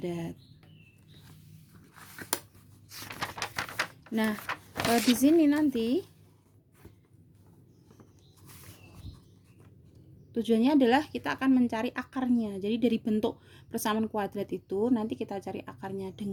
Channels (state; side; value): identical; both; correlation 1.00